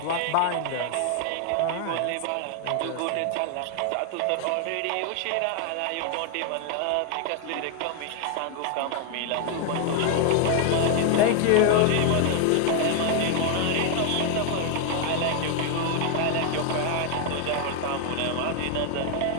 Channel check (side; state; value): both; different; correlation 0.00